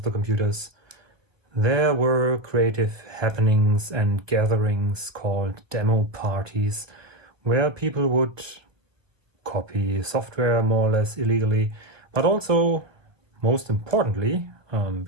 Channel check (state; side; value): late; left; 1.1 ms